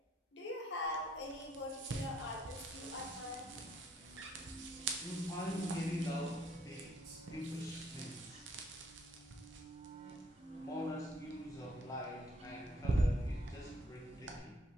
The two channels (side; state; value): both; normal; correlation 0.66